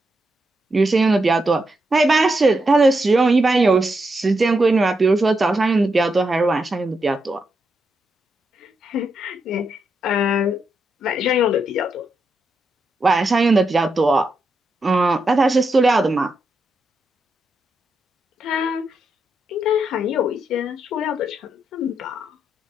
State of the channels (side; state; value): both; normal; correlation 0.83